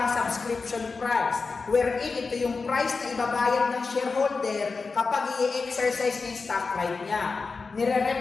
subscription price. Wherein ito yung price na ibabayad ng shareholder kapag i-exercise ng stock right niya.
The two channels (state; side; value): quieter; right; 4.4 dB